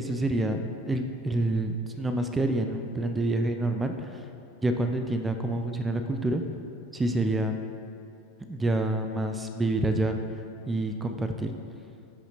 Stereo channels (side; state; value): both; normal; correlation 0.67